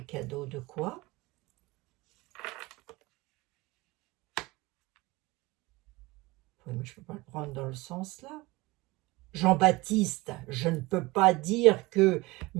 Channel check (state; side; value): quieter; left; 21.8 dB